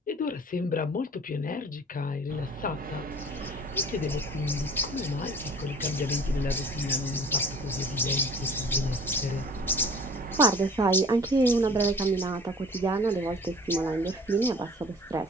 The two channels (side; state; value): both; normal; correlation 0.47